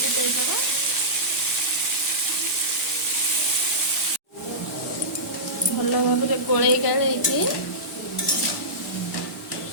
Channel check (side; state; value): both; normal; correlation -0.17